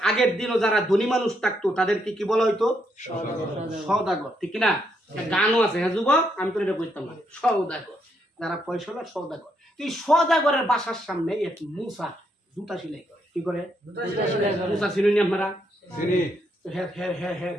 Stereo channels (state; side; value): normal; both; correlation 0.76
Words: আগের দিনও যারা ধনী মানুষ থাকতো তাদেরকে কি বলা হইতো? সওদাগর, ঠিক কিনা? গানও আছে, হ্যাঁ যুবক, আমি তো এটা বুঝতাম না। সওদাগর, যারা পয়সাওয়ালা সওদাগর। এই সওদাগরের বাসার সামনে এক মুসা জুতা সেলাই করে। কি করে? মুসা চিনুন আপনারা?